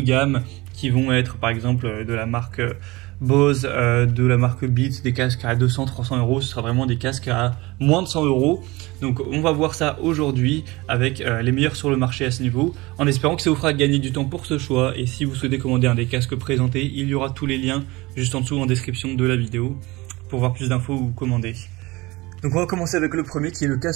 gamme qui vont être par exemple de la marque Bose, de la marque Beats, des casques à 200-300 euros. Ce sera vraiment des casques à moins de 100 euros. Donc on va voir ça aujourd'hui avec les meilleurs sur le marché à ce niveau, en espérant que ça vous fera gagner du temps pour ce choix. Et si vous souhaitez commander un des casques présentés, il y aura tous les liens juste en dessous en description de la vidéo pour voir plus d'infos ou commander. Donc on va commencer avec le premier qui est le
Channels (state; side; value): quieter; left; 22.0 dB